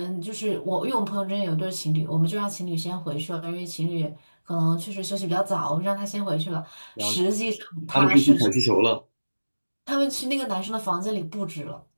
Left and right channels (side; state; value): both; inverted; correlation -1.00